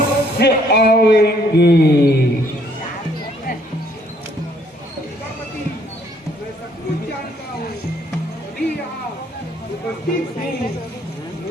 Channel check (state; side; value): normal; both; correlation 0.65